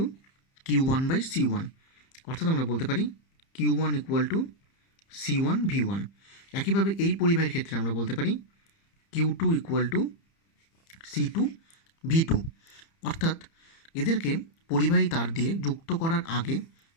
Q1/C1, অর্থাৎ আমরা বলতে পারি Q1 = C1V1। একইভাবে এই পরিবাহীর ক্ষেত্রে আমরা বলতে পারি Q2 = C2V2। অর্থাৎ এদেরকে পরিবাহী তার দিয়ে যুক্ত করার আগে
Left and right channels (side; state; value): right; late; 30 ms